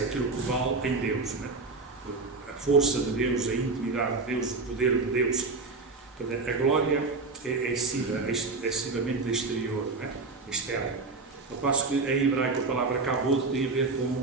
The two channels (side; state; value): left; quieter; 3.9 dB